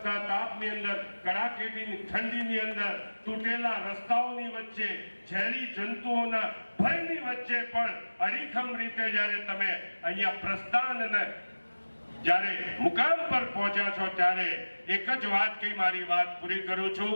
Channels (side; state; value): both; inverted; correlation -1.00